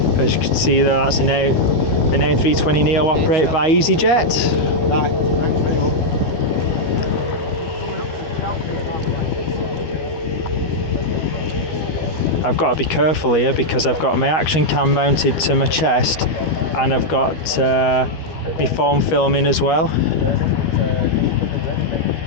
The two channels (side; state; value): right; late; 13 ms